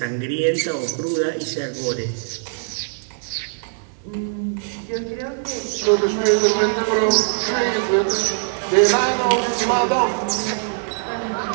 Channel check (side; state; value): left; silent; digital silence